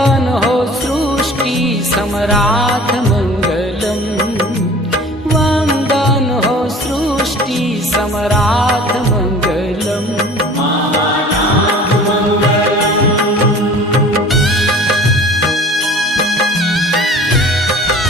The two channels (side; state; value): both; normal; correlation 0.45